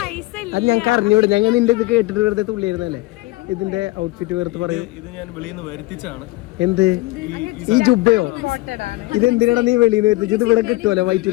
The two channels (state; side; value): quieter; right; 20.7 dB